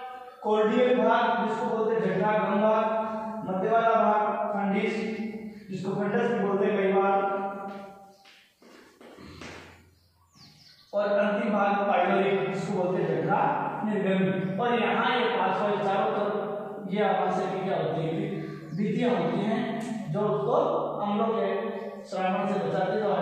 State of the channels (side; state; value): both; identical; correlation 1.00